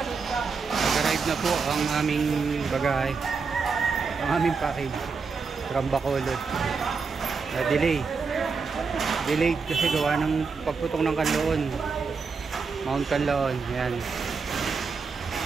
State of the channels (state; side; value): quieter; left; 5.0 dB